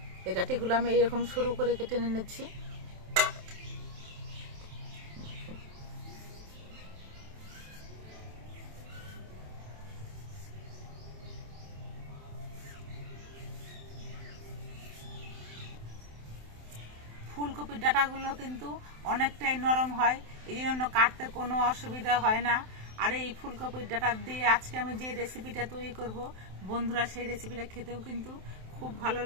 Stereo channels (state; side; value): late; left; 27 ms